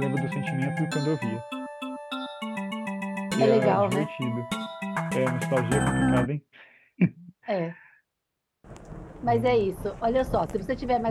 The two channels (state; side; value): identical; both; correlation 1.00